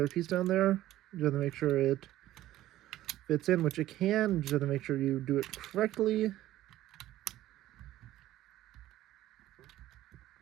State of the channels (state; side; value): quieter; left; 14.6 dB